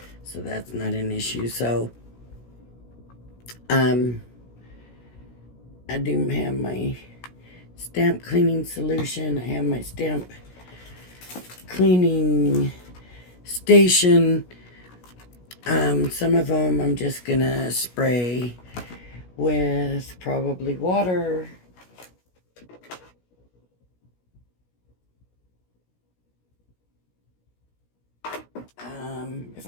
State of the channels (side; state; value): right; late; 16 ms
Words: so that's not an issue. So I do have my stamp cleaning solution. I have my stamp cleaning station. Some of them I'm just gonna spray with probably water. If